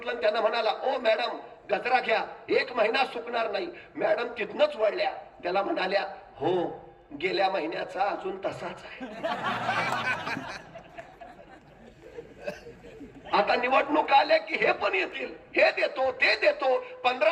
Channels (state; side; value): identical; both; correlation 1.00